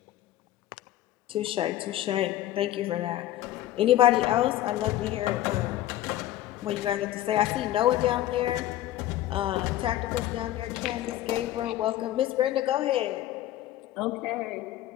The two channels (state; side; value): quieter; right; 14.1 dB